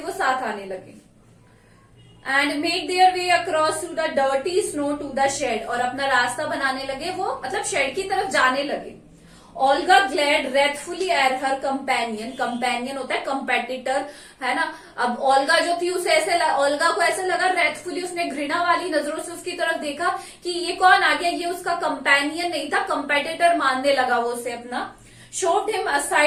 साथ आने लगे. And make their way across to the dirty snow to the shed. और अपना रास्ता बनाने लगे, वो मतलब शेड की तरफ जाने लगे. Olga glared wrathfully at her companion. Companion होता है कंपेटिटर, है ना. अब ओल्गा जो थी उसे ओल्गा को ऐसे लगा wrathfully, उसने घृणा वाली नजरों से उसकी तरफ देखा कि ये कौन आ गया, ये उसका कंपेनियन नहीं था, कंपेटिटर मानने लगा वो उसे अपना. Shoved him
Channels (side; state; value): both; identical; correlation 1.00